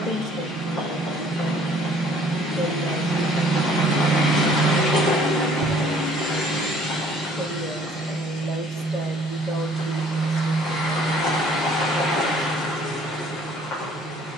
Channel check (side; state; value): both; normal; correlation 0.57